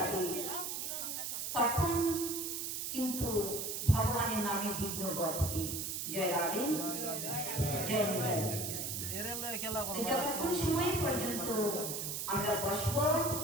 তখন কিন্তু ভগবানের নামে বিঘ্ন ঘটবে। জয় রাধে, জয় নিতাই। যতক্ষণ সময় পর্যন্ত আমরা বসবো,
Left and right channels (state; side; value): noise; right; hiss, 3 dB below the sound